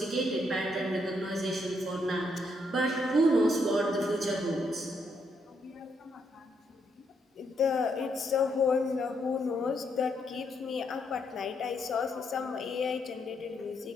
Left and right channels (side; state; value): both; normal; correlation 0.76